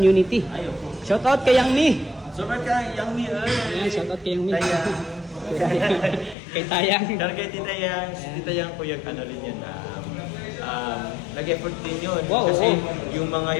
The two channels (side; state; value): right; drops out; at 6.4 s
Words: Shout out kay Yang Mi. Sobrang ka, Yang Mi. Shout out kay Yang Mi. Tayang. Kay Tayang. Pero kay Tita Yang po yung rin yun. Nag-effort din yun. Wow, Kasi yung mga